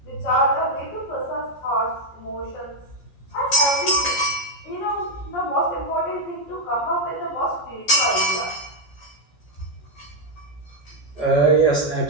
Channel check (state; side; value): late; right; 14 ms